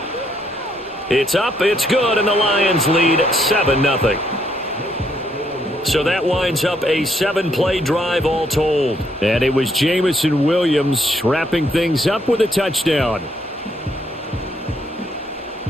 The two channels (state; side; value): normal; both; correlation 0.72